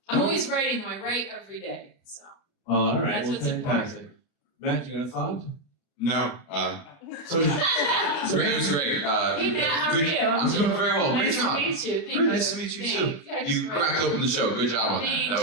I'm always writing though. I write every day, so. Well, all right. That's Well, what's fantastic. Matt, you got a thought? No. So, Great, it was great. Hey Matt, how are good- you? I'm doing very well. Great Nice to job. meet you. Thank Very you. nice to meet you Thank too. Yeah, I just You wrote- cracked open the show. Good job on that. Thank That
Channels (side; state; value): right; late; 29 ms